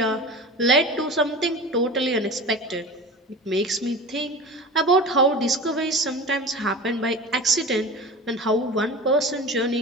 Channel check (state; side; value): normal; both; correlation 0.33